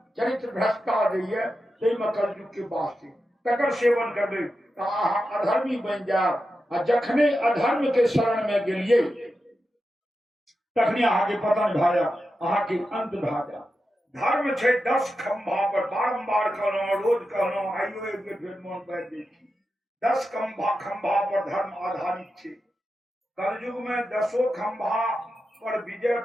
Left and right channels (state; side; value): normal; both; correlation 0.90